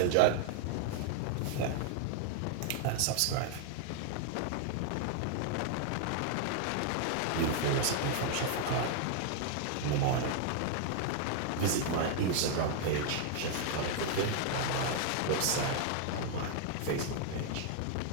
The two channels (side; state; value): both; different; correlation 0.00